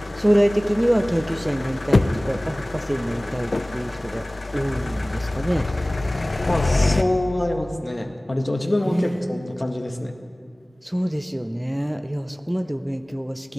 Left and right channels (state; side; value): normal; both; correlation 0.98